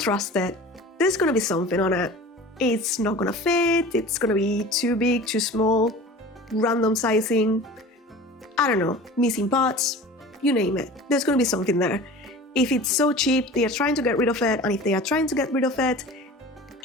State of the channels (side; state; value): both; normal; correlation 0.39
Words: it. There's gonna be something on it. It's not gonna fit, it's gonna be too big, too small, random sizing, I don't know, missing parts, you name it. There's gonna be something there. If it's so cheap, they are trying to get rid of it, and if they are trying to get rid of it,